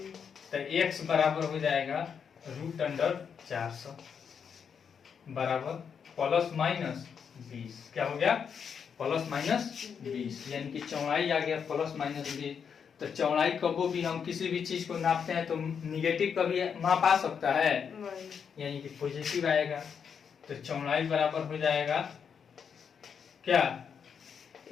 तो x बराबर हो जाएगा √400 बराबर प्लस माइनस 20। क्या हो गया? प्लस माइनस 20, यानी कि चौड़ाई आ गया प्लस माइनस 20। तो चौड़ाई कभी भी हम किसी भी चीज को नापते हैं तो निगेटिव कभी माप आ सकता है, यानी कि पॉजिटिव आएगा। तो चौड़ाई बराबर हो जाएगा क्या?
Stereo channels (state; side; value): quieter; right; 6.9 dB